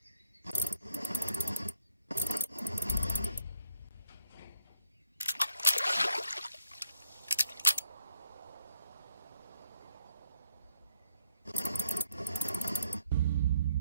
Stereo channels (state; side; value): inverted; both; correlation -0.73